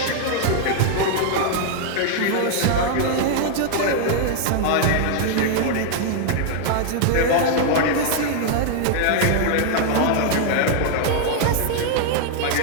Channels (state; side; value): different; both; correlation 0.00